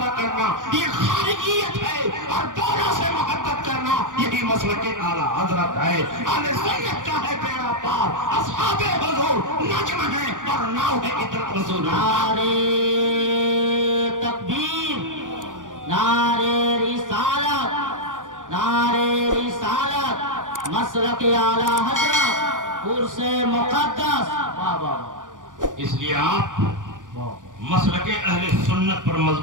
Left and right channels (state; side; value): late; left; 0.88 ms